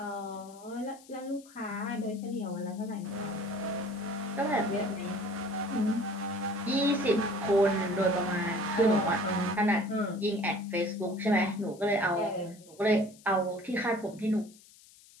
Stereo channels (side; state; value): left; noise; hiss, 24 dB below the sound